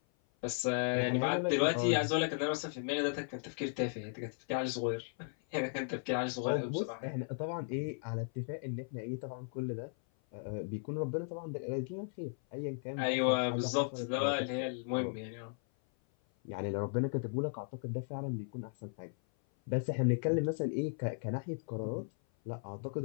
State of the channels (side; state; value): right; silent; 54 dB below the other